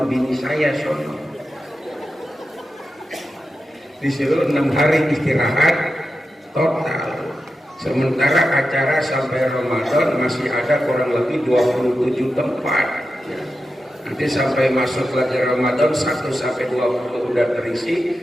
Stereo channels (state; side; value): normal; both; correlation 0.90